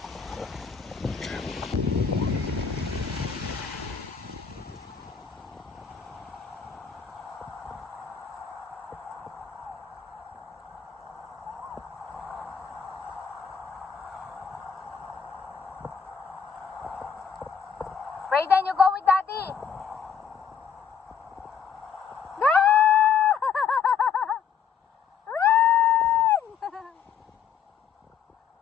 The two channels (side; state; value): right; quieter; 7.1 dB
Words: Brayden, you go with daddy!